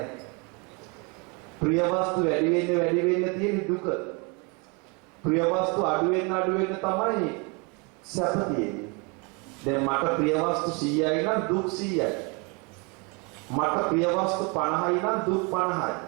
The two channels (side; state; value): left; quieter; 31.0 dB